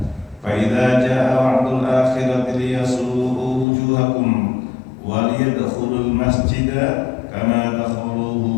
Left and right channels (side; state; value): right; drops out; at 3.7 s